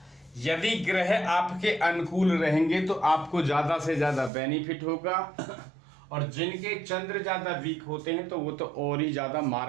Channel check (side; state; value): left; drops out; at 4.3 s